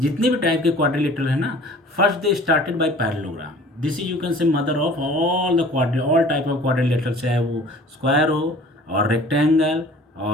भी type के quadrilateral है ना, first they started by parallelogram. This is you can say mother of all the quadri all type of quadrilateral, चाहे वो square हो और rectangle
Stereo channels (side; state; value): both; normal; correlation 0.48